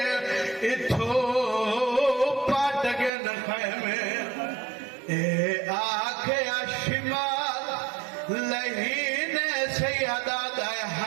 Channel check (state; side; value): drops out; left; at 3.1 s